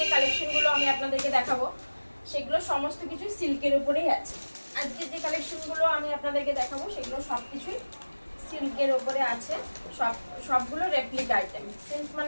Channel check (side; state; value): both; inverted; correlation -1.00